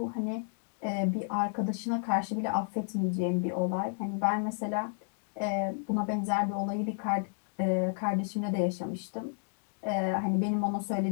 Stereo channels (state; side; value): silent; right; 57 dB below the other